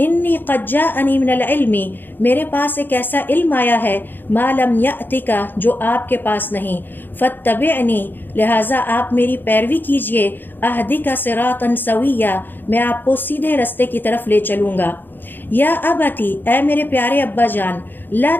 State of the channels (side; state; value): right; late; 0.093 ms